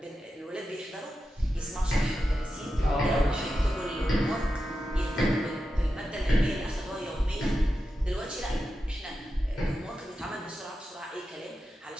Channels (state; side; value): normal; both; correlation 0.90